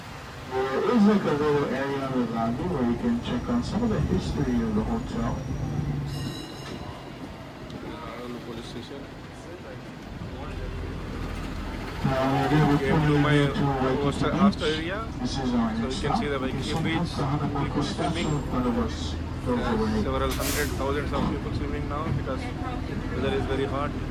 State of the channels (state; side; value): identical; both; correlation 1.00